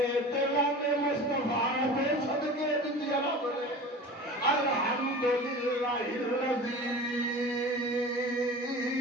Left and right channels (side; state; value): both; normal; correlation 0.36